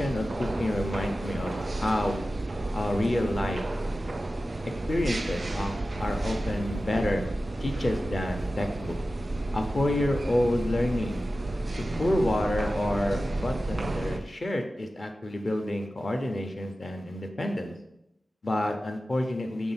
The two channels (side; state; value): both; normal; correlation 0.94